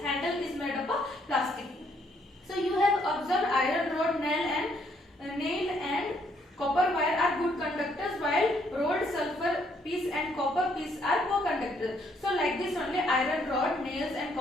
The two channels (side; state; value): both; normal; correlation 0.69